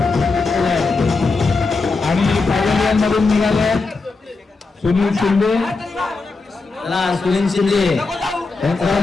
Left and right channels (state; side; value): quieter; right; 4.0 dB